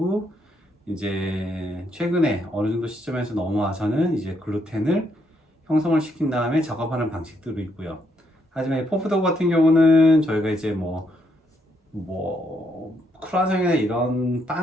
이제 최근에 어느 정도 시점에서 넘어와서는 이제 글루텐을 형성을 시킨 다음에 작업하는 방식들도 있고요. 하지만 포프도우 같은 경우는 저희가 이제 크루아상이나 이런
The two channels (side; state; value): both; normal; correlation 0.75